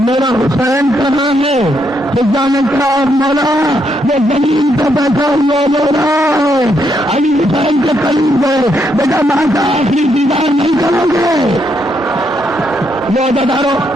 میرا حسین کہاں ہے؟ خدا نے کہا مولا یہ زمین پہ بیٹھا ہوا مولا ہے۔ علی حسین کے قریب گئے، بیٹا ماں کا آخری دیدار نہیں کرو گے؟ لو بدارو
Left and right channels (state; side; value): normal; both; correlation 0.77